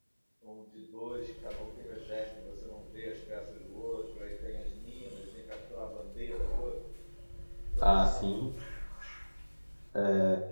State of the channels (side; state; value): both; inverted; correlation -1.00